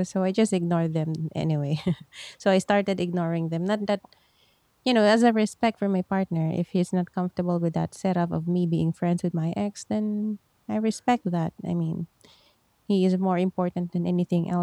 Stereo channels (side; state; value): both; identical; correlation 1.00